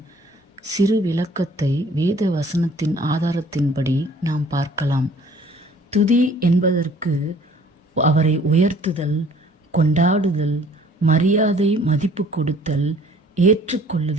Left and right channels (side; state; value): both; normal; correlation 0.55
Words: சிறு விளக்கத்தை வேத வசனத்தின் ஆதாரத்தின்படி நாம் பார்க்கலாம். துதி என்பதற்கு அவரை உயர்த்துதல், கொண்டாடுதல், மரியாதை மதிப்பு கொடுத்தல்,